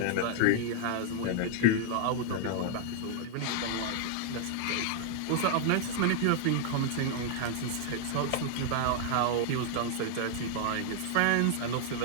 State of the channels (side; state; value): both; different; correlation -0.01